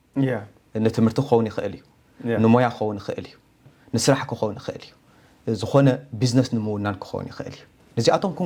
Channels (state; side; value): identical; both; correlation 1.00